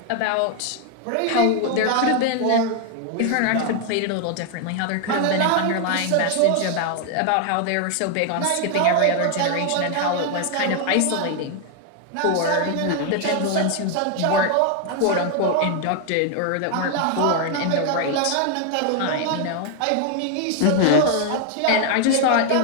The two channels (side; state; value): both; different; correlation 0.00